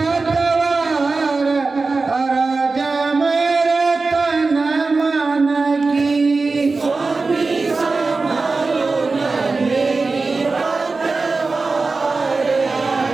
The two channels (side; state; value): left; quieter; 3.9 dB